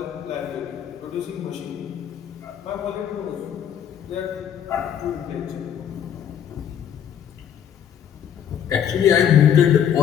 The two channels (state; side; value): quieter; right; 9.1 dB